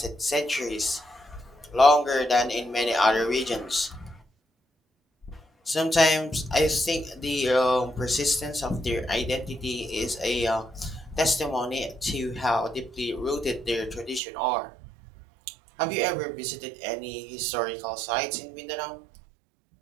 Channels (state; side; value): drops out; left; at 14.2 s